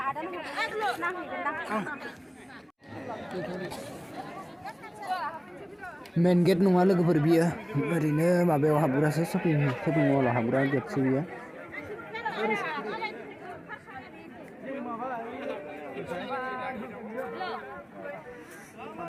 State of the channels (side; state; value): both; identical; correlation 1.00